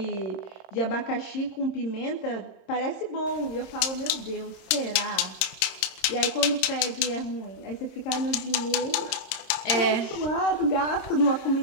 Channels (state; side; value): late; right; 27 ms